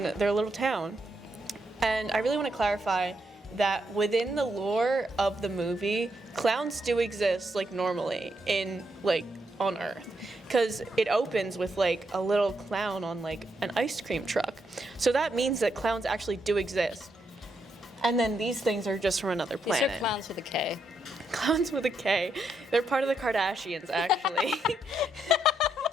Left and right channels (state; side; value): normal; both; correlation 0.79